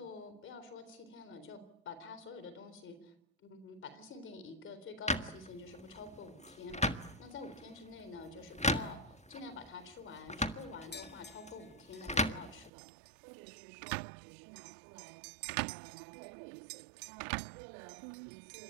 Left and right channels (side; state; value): left; drops out; at 12.7 s